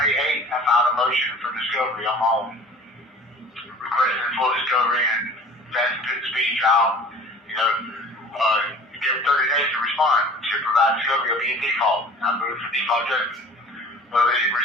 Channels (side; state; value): both; normal; correlation 0.44